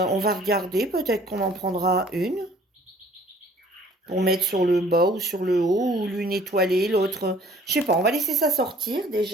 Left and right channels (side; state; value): both; normal; correlation 0.55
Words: va regarder, peut-être qu'on en prendra une. Pour mettre sur le bas ou sur le haut, ou l'une étoilée, l'autre. Je sais pas, on va laisser ça sortir